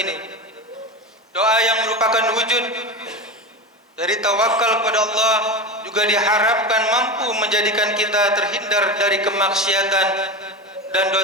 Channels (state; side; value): normal; both; correlation 0.23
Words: Doa yang merupakan wujud dari tawakal kepada Allah juga diharapkan mampu menjadikan kita terhindar dari kemaksiatan dan